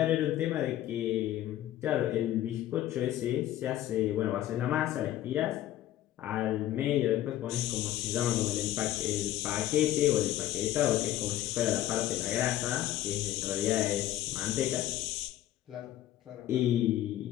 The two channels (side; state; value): right; quieter; 13.5 dB